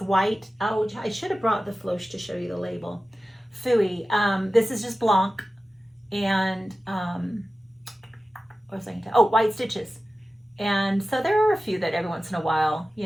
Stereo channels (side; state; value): both; normal; correlation 0.95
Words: white. Oh, I should have brought the Floche to show you the label. Phooey. This is just Blanc. And what was I going to? Oh, white stitches. And so there are a few that every once in a while,